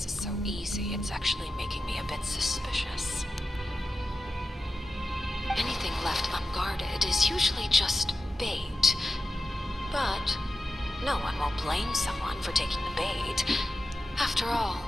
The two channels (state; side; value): normal; both; correlation 0.92